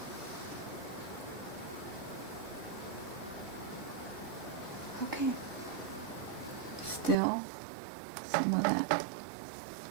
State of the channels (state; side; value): drops out; left; at 7.2 s